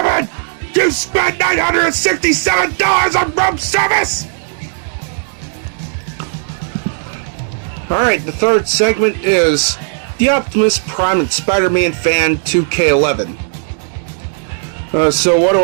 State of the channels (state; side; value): silent; left; digital silence